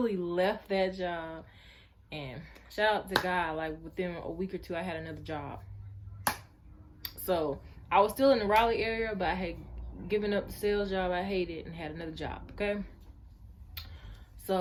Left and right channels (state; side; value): identical; both; correlation 1.00